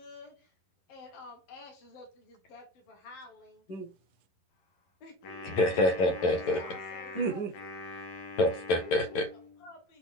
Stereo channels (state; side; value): late; right; 11 ms